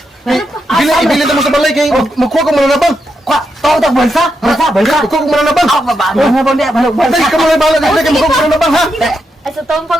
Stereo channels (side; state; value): both; normal; correlation 0.84